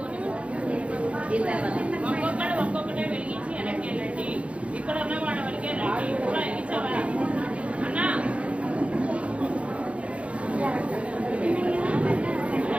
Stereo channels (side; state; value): left; late; 0.062 ms